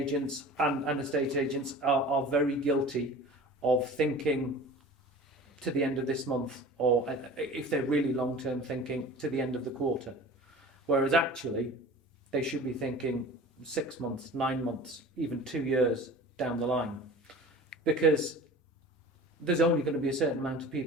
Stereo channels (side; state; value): both; normal; correlation 0.40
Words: and estate agents are very guilty of thinking to the end of this month, or if they're really long-term thinking, to the end of the quarter. Whereas actually, they should be thinking 6 months, 9 months, even 2 years down the line. Because there's only going to be a certain amount of